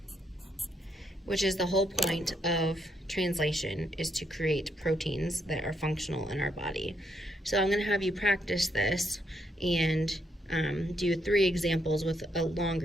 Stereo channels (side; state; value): both; normal; correlation 0.76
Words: which is the whole point of translation, is to create proteins that are functional in our body. So I'm going to have you practice this and do 3 examples with a